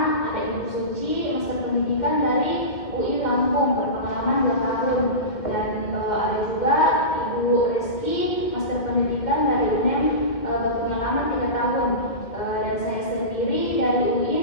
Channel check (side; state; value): right; late; 2.2 ms